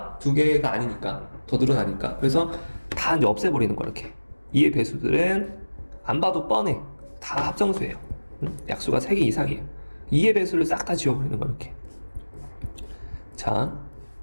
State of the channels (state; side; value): inverted; both; correlation -1.00